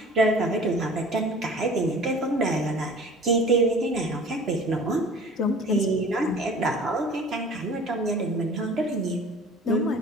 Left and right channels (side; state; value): both; normal; correlation 0.45